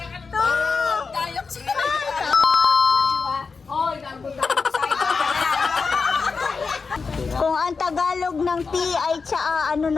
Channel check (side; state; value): right; quieter; 4.8 dB